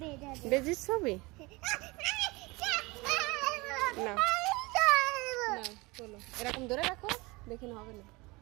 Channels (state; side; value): quieter; left; 24.1 dB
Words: বেজির ছবি না, চলো এরকম ধরে রাখো, দেখি না হবে না।